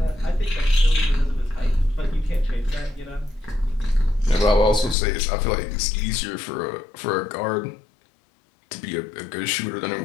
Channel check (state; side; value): drops out; right; at 5.0 s